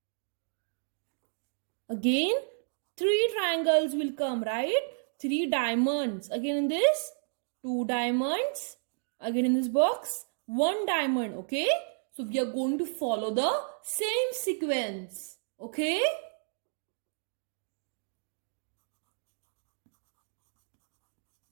Again, 3 triangles will come, right? 3 diamonds. Again in this, 2 diamonds. Again in this box, 1 diamond. Okay? So we are going to follow the same sequence. Okay?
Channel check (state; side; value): silent; left; digital silence